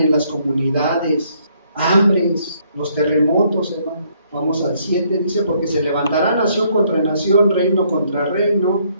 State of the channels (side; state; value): both; inverted; correlation -0.68